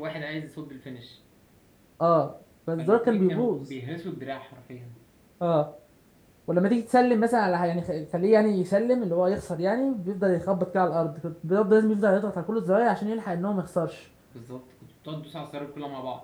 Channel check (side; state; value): both; identical; correlation 1.00